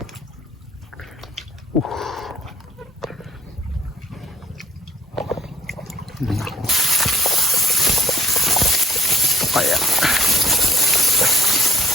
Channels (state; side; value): normal; both; correlation 0.58